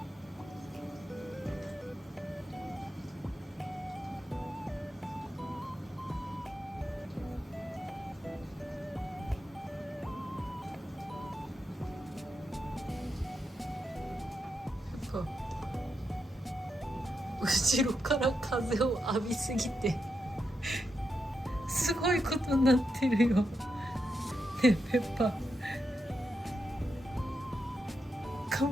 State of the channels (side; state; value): both; normal; correlation 0.85